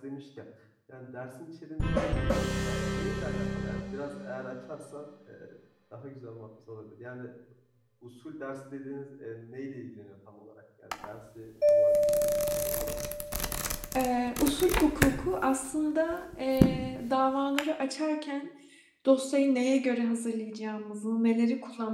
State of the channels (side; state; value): both; identical; correlation 1.00